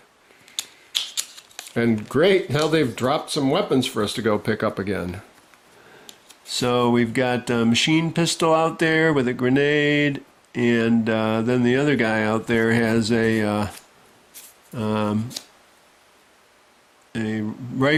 And great, now they've dropped some weapons for us to go pick up again. So we've got a machine pistol out there with a grenade, and then the other guy out there has a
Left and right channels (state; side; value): identical; both; correlation 1.00